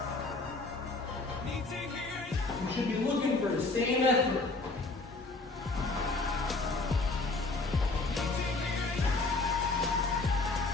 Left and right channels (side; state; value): right; quieter; 3.4 dB